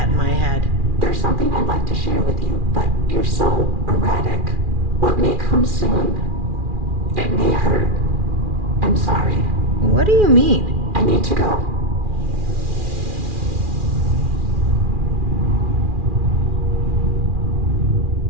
in my head. There's something I'd like to share with you, but you're so erratic. What may come soon? It may hurt. I'm sorry. What do you mean? I need to go.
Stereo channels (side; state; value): left; late; 2.4 ms